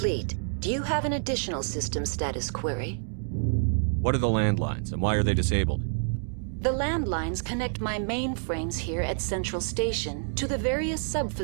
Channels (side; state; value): left; silent; 59 dB below the other